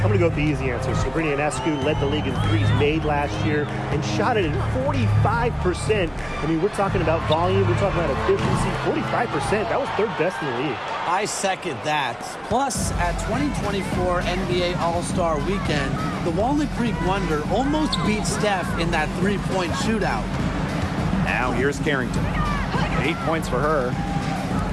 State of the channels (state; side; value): identical; both; correlation 1.00